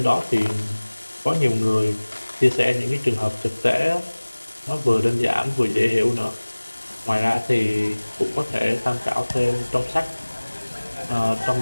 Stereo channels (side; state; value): both; inverted; correlation -1.00